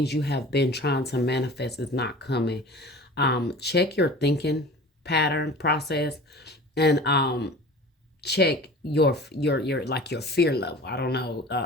you have been trying to manifest is not coming, check your thinking pattern process and check your fear level. I don't know.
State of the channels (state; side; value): normal; both; correlation 0.40